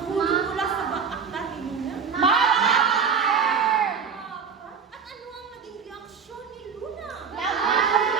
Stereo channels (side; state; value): left; quieter; 6.2 dB